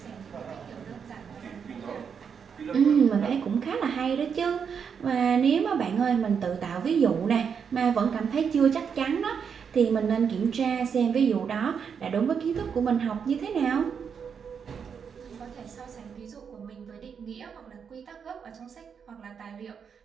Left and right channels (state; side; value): quieter; left; 6.8 dB